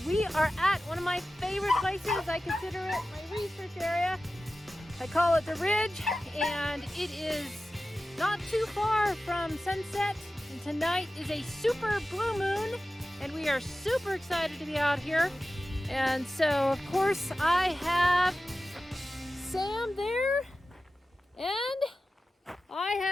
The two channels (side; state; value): both; normal; correlation 0.94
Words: we are at one of my favorite places. I consider it my research area. I call it the Ridge, and it is not too far from sunset. And tonight is a super blue moon, and we are super excited to be out here. And so, of course, I have Sam there, and I